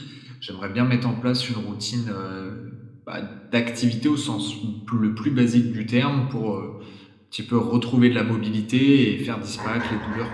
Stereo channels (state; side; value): identical; both; correlation 1.00